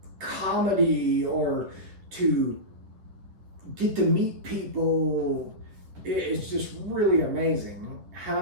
comedy or to get to meet people. It's just really amazing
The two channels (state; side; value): late; left; 10 ms